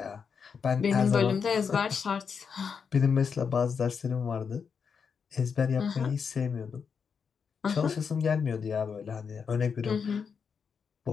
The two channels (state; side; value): quieter; right; 6.2 dB